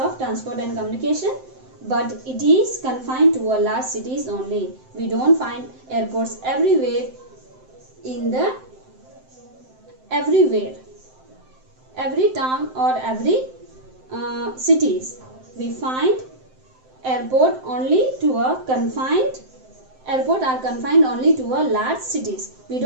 transport and communication, but it is confined to a large cities only. We don't find airports everywhere every town or every cities. We find airport are confined only to a large cities. We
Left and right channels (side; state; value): left; late; 7.7 ms